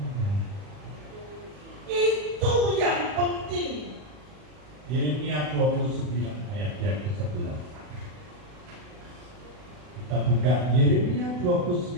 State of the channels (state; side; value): late; left; 40 ms